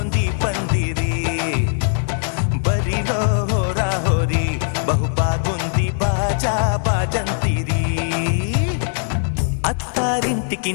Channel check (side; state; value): right; silent; 65 dB below the other